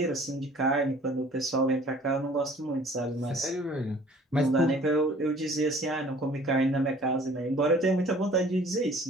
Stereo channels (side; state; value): both; normal; correlation 0.51